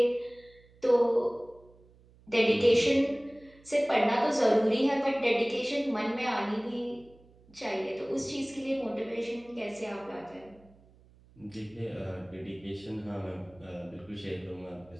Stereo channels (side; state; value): right; noise; hum, 27 dB below the sound